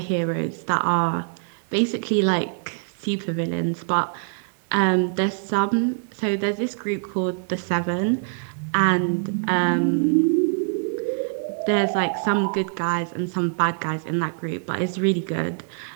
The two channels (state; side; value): silent; left; 63 dB below the other